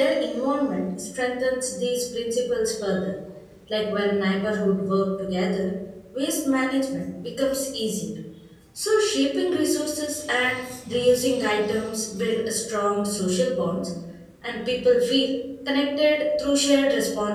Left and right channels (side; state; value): both; identical; correlation 1.00